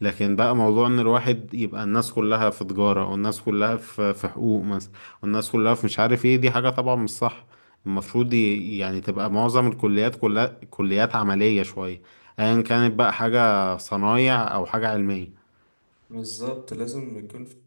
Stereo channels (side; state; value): both; inverted; correlation -1.00